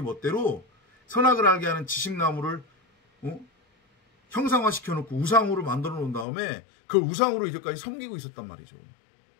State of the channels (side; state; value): right; drops out; at 6.2 s